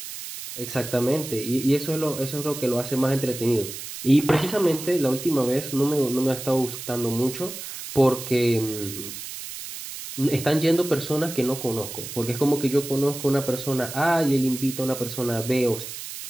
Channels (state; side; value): noise; right; hiss, 10 dB below the sound